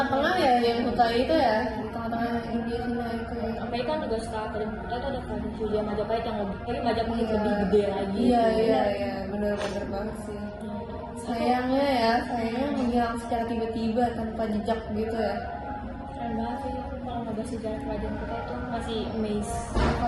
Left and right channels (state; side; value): identical; both; correlation 1.00